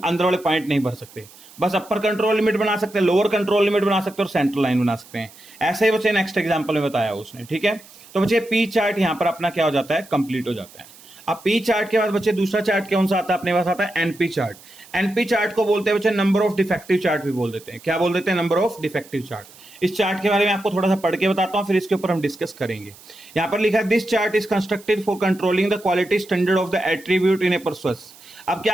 अंदर वाले पॉइंट नहीं भर सकते, बस अपर कंट्रोल लिमिट बना सकते हैं, लोअर कंट्रोल लिमिट बना सकते हैं और सेंटर लाइन बना सकते हैं। ऐसे ही बच्चे नेक्स्ट एग्जांपल में बताया उसने, ठीक है। तो बच्चे पी चार्ट यहाँ पर अपना क्या हो जाता है, कंप्लीट हो जाता है। अब पी चार्ट के बाद बच्चे दूसरा चार्ट कौन सा आता है अपने पास, आता है एनपी चार्ट। एनपी चार्ट को बोलते हैं बच्चे नंबर ऑफ डिफेक्टिव चार्ट भी बोल देते हैं। क्या बोल देते हैं, नंबर ऑफ डिफेक्टिव चार्ट। इस चार्ट के बारे में आपको थोड़ा सा पढ़ के बताता हूं, फिर इसके ऊपर हम डिस्कस करेंगे। यहां पर लिखा है this chart is constructed for controlling the quality standard of the attribute in a process. अब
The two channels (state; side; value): noise; right; hiss, 22 dB below the sound